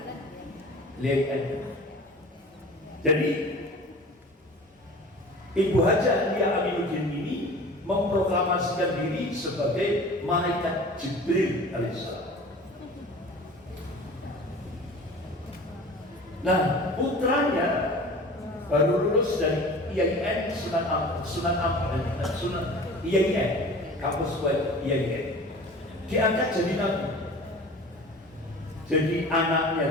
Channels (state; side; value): normal; both; correlation 0.40